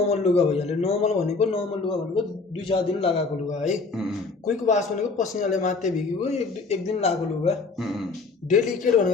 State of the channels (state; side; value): quieter; right; 4.1 dB